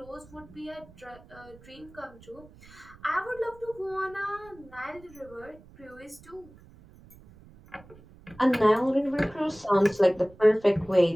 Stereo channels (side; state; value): right; noise; rumble, 23 dB below the sound